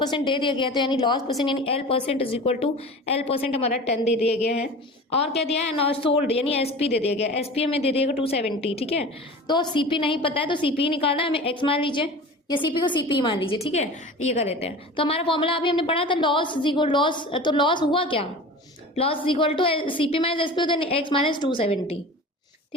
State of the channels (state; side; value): normal; both; correlation 0.36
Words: दे दिया गया, तो यानी लॉस परसेंट यानी L percent is equal to L percent हमारा 10 दे दिया गया है। और क्या दिया है, सोल्ड यानी एसपी दे दिया गया, एसपी हमें दे दिएगा 270। ठीक है, तो सीपी नहीं पता है तो सीपी निकालना है हमें, एक्स मान लीजिए या सीपी को सीपी मान लीजिए। ठीक है, ये कर लेते हैं। तो हमारा फॉर्मूला अभी हमने पढ़ा था लॉस लॉस, तो लॉस हुआ क्या, loss equal to CP minus SP होता है एक्स माइनस 270।